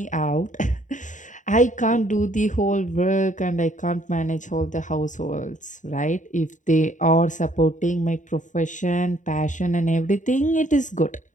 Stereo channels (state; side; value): late; right; 0.36 ms